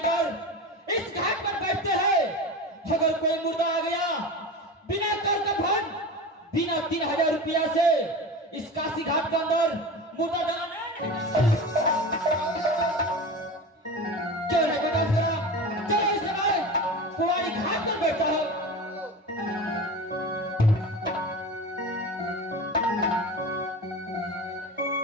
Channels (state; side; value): normal; both; correlation 0.29